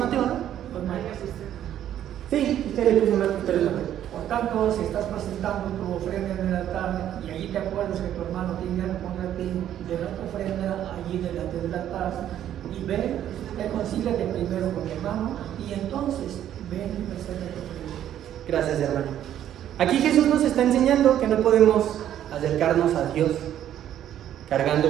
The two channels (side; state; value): left; quieter; 11.0 dB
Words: no? Pues Marcos. Sí, usted le puso Marcos, pero es Mateo. Por tanto, si estás presentando tu ofrenda en el altar y allí te acuerdas que tu hermano tiene algo contra ti, de la ofrenda allí delante del altar y ve, reconcíliate primero con tu hermano y entonces ven y presenta tu ofrenda. Gracias, hermano. Aquí Jesús nos está enseñando que no podemos acercarnos a Dios